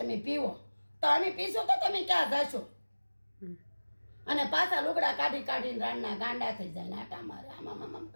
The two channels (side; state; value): both; inverted; correlation -1.00